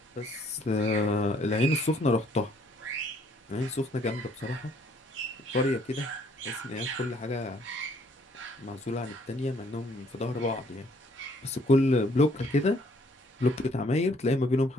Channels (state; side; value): normal; both; correlation 0.64